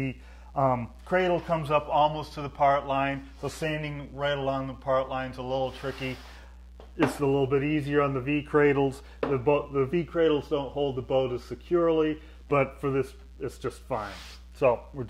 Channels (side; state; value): both; identical; correlation 1.00